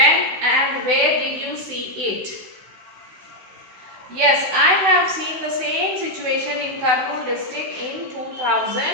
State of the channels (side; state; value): left; late; 16 ms